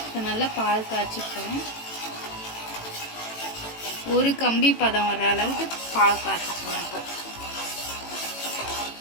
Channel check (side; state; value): right; late; 18 ms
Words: இப்போ நல்லா பால் காய்ச்சி போகிறேன். ஒரு கம்பி பதம் வர்ற அளவுக்கு பால் காய்ச்சி போகிறேன். இப்போ